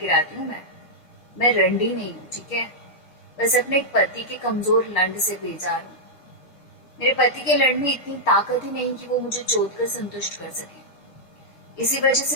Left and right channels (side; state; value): right; late; 6.5 ms